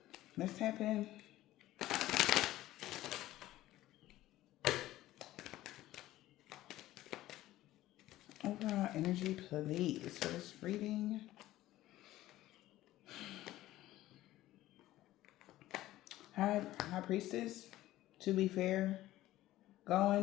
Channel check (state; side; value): quieter; right; 15.4 dB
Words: Let's tap in. Overall energy, please, for this reading. High Priestess, to be fair,